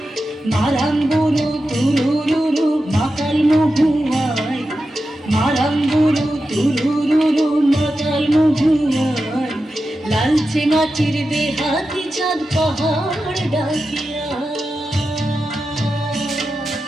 মারাম বুড়ো তুরুরুরু মাতাল মহুয়ায়, মারাম বুড়ো তুরুরুরু মাতাল মহুয়ায়। লালচে মাটির দেহাতি চাঁদ পাহাড় ডাকিয়া।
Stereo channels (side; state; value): both; normal; correlation 0.91